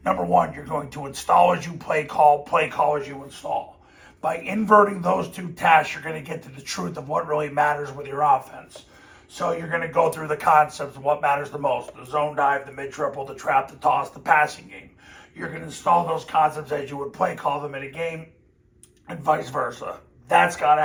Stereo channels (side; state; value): both; identical; correlation 1.00